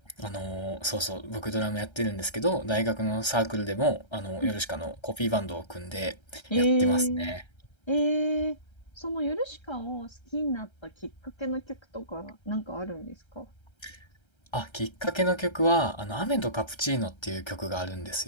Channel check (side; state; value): right; late; 1.3 ms